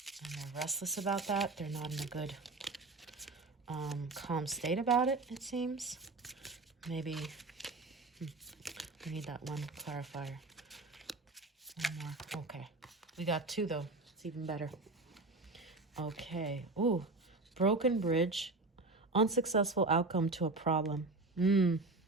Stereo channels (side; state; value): left; quieter; 3.3 dB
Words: they're restless about that. They're not in a good calm state about it, it seems. Maybe we need that 1 clarifier. 1 more. Okay. We got 2 though. It's even better. Okay. Ooh. Broken bridge. Unsuccessful outcome to a problem.